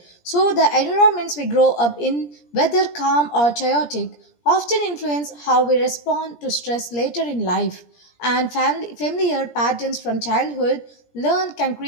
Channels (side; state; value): right; late; 17 ms